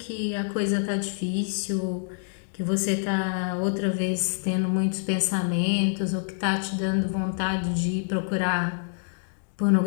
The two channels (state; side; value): silent; right; digital silence